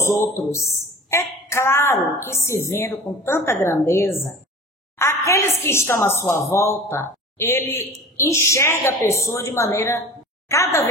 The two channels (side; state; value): both; normal; correlation 0.39